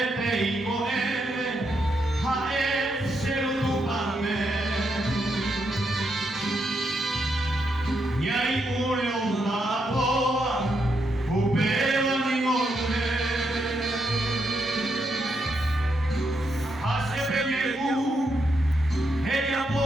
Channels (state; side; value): normal; both; correlation 0.80